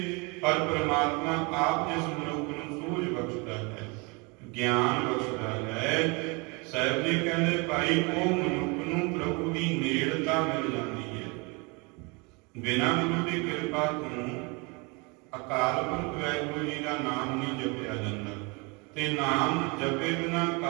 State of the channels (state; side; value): quieter; left; 29.4 dB